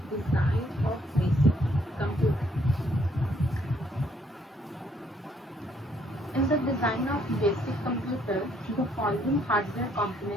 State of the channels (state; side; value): normal; both; correlation 0.67